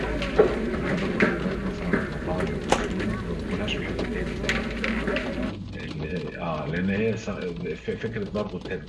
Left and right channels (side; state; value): both; identical; correlation 1.00